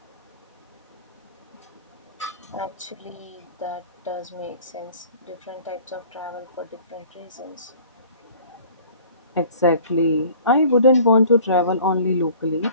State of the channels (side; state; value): both; inverted; correlation -0.48